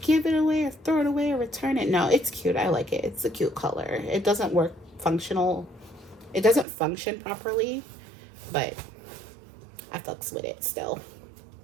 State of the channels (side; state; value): left; drops out; at 6.7 s